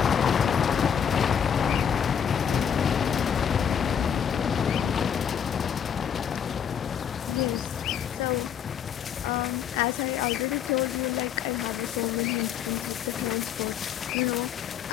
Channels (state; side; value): quieter; right; 8.2 dB